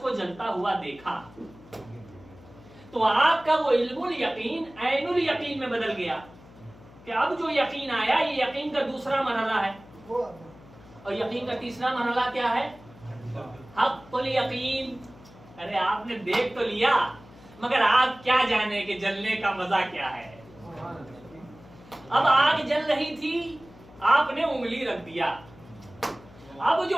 جلتا ہوا دیکھا تو آپ کا وہ علم الیقین عین الیقین میں بدل گیا کہ اب جو یقین آیا یہ یقین کا دوسرا مرحلہ ہے. اور یقین کا تیسرا مرحلہ کیا ہے؟ حق الیقین. ارے آپ نے دیکھ تو لیا مگر آپ کیا جانے کہ جلنے کا مزہ کیا ہے. اب آگ جل رہی تھی، آپ نے انگلی رکھ دیا. اب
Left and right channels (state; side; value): noise; left; hum, 22 dB below the sound